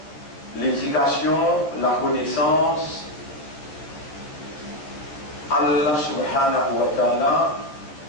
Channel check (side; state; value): right; late; 13 ms